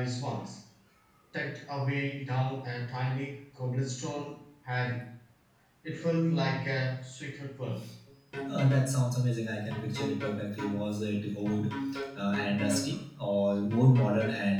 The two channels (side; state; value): both; identical; correlation 1.00